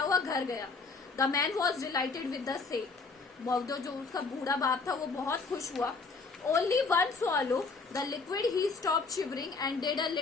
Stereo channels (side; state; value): right; quieter; 4.3 dB